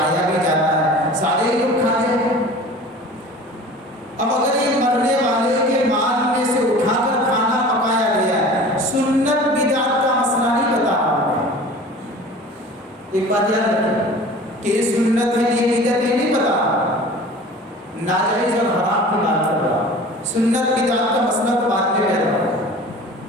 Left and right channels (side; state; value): both; normal; correlation 0.41